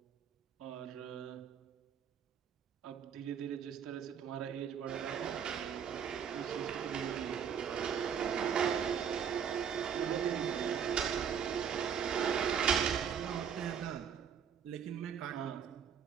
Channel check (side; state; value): left; quieter; 7.8 dB